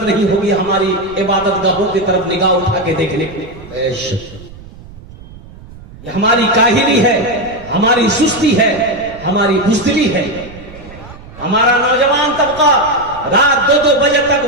नहीं होगी हमारी इबादत गाहों की तरफ निगाह उठा के देखने की। बेशक ये हमारी काहिली है, हमारी सुस्ती है, हमारी बुज़दिली है। हमारा नौजवान तबका रात 2-2 बजे तक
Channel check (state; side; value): noise; right; rumble, 18 dB below the sound